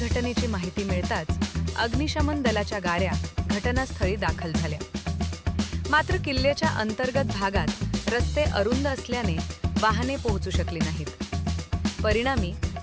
माहिती मिळताच अग्निशमन दलाच्या गाड्या घटनास्थळी दाखल झाल्या। मात्र किल्ल्याच्या अंतर्गत भागात रस्ते अरुंद असल्याने वाहने पोहोचू शकली नाहीत। परिणामी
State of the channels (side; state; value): both; identical; correlation 1.00